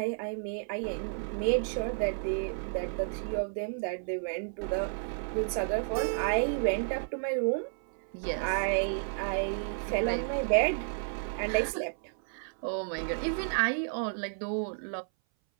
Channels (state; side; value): silent; left; 57 dB below the other